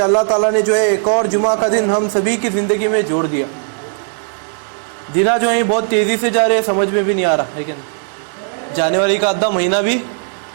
اللہ تعالیٰ نے جو ہے ایک اور جمعہ کا دن ہم سبھی کی زندگی میں جوڑ دیا۔ دنوں جو ہیں بہت تیزی سے جا رہے ہیں، سمجھ میں بھی نہیں آ رہا ہے کہ نہیں، جنوری کا آدھا مہینہ بھی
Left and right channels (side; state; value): left; silent; 64 dB below the other